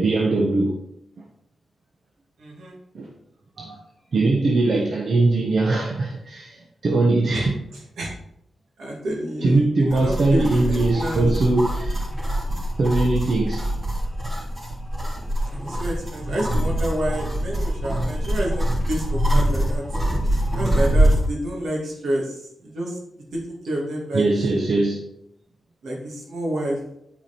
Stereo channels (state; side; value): normal; both; correlation 0.91